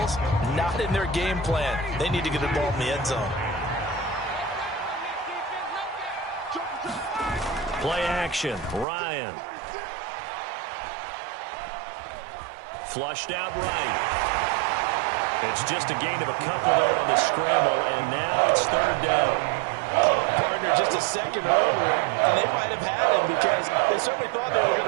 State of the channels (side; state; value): left; drops out; at 8.8 s